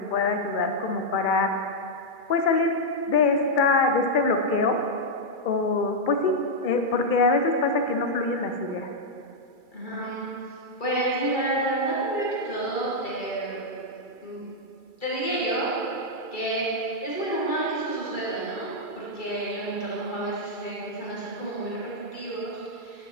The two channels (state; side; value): late; right; 2.3 ms